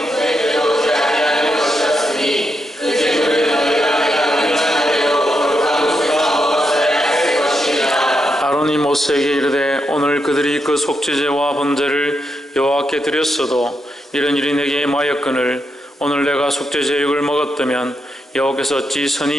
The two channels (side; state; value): both; normal; correlation 0.83